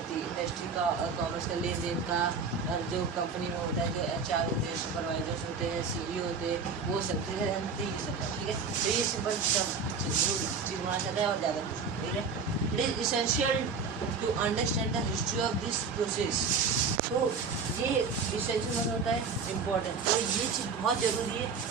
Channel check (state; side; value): quieter; left; 5.0 dB